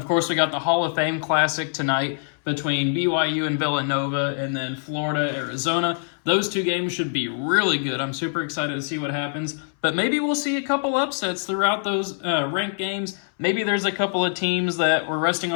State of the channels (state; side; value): silent; right; 62 dB below the other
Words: course, we got the Hall of Fame Classic tonight between BYU and Villanova, and then Florida, Arizona. Those two games should be really good. I'm super excited to see what happens. But maybe we'll see a couple upsets throughout those ranked games. Maybe there's a couple of teams that were resting